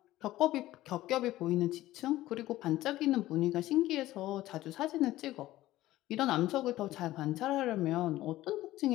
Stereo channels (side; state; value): right; quieter; 15.8 dB